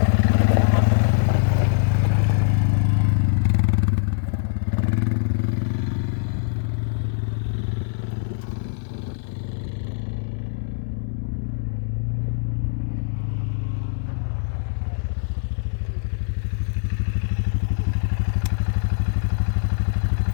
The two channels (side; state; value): right; silent; 63 dB below the other